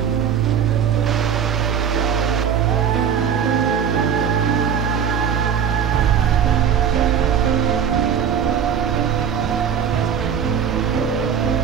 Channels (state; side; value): quieter; left; 7.9 dB